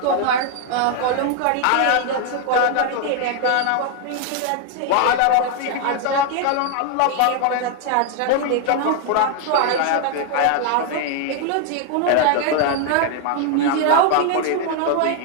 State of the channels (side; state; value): both; different; correlation 0.00